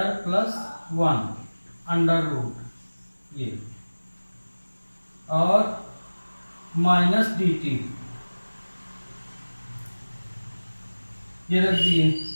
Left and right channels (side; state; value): both; inverted; correlation -1.00